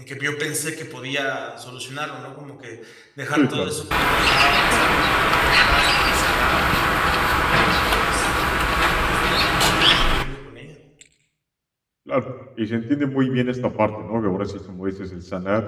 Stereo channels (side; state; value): both; identical; correlation 1.00